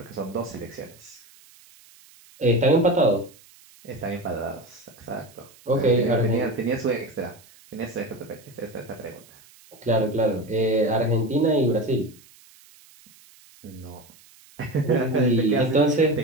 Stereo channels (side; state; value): right; noise; hiss, 26 dB below the sound